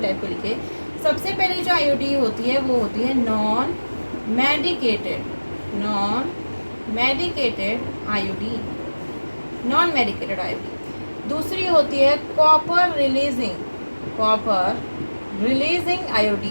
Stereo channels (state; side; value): inverted; both; correlation -1.00